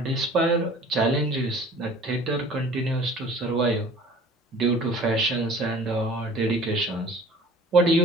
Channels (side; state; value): both; normal; correlation 0.47